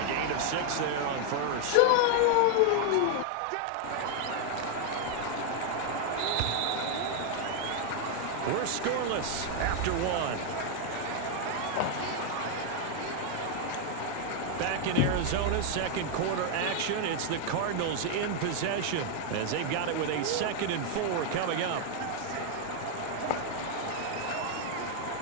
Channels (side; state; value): both; different; correlation 0.00